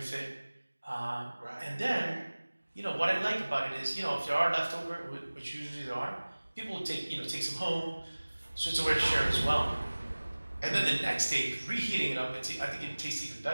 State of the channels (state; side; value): inverted; both; correlation -1.00